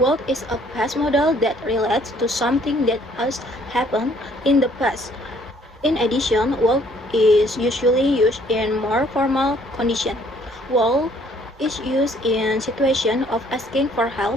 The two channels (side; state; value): both; normal; correlation 0.61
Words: is a past modal that relates to something that has happened in the past. In addition, will is usually used in more formal condition. Will is used in situation of asking for